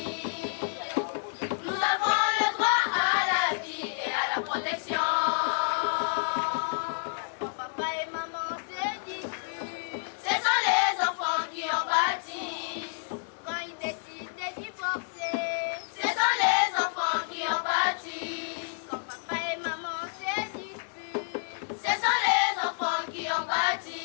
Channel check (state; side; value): silent; right; digital silence